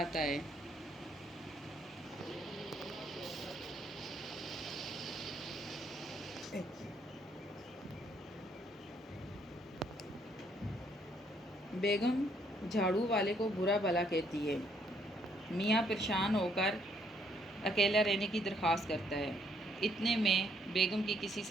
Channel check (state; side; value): normal; both; correlation 0.69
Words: ہے، بیگم جھاڑو والے کو برا بھلا کہتی ہے۔ میاں پریشان ہو کر اکیلا رہنے کی درخواست کرتا ہے۔ اتنے میں بیگم کی کسی